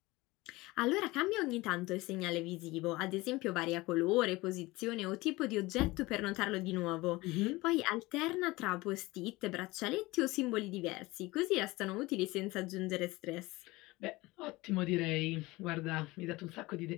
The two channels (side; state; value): right; quieter; 21.0 dB